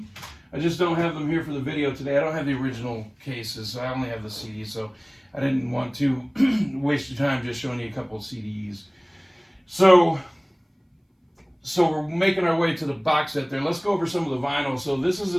I just don't have them here for the video today. I don't have the original cases, so I only have the CDs. So I didn't want to waste your time just showing you a couple of CDs. So we're making our way to the box set there. Let's go over some of the vinyl. So this is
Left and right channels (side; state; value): both; identical; correlation 1.00